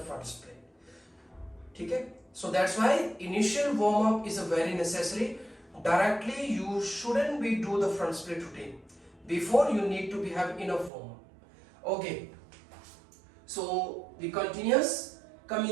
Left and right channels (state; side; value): drops out; left; at 10.9 s